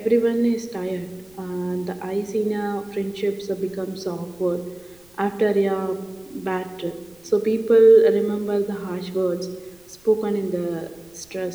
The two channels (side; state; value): right; noise; rumble, 30 dB below the sound